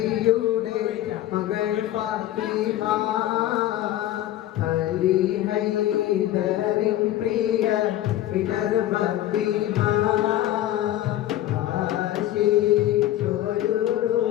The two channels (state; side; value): quieter; right; 13.5 dB